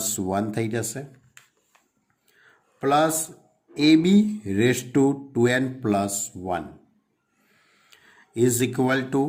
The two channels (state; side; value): identical; both; correlation 1.00